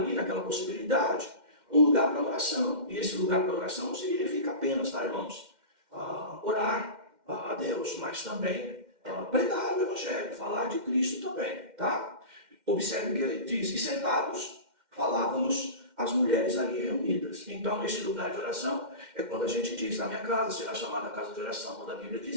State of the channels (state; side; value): late; left; 2.1 ms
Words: naquela possibilidade, um lugar para oração. E esse lugar para oração não significa apenas, tá, irmãos, orar a Deus, mas também pregar o Evangelho, falar de Cristo também, tá? Observe que ele diz, e sentados falávamos as mulheres ali reunidas. Então, esse lugar de oração é quando a gente diz, na minha casa será chamada casa de oração, quando a Bíblia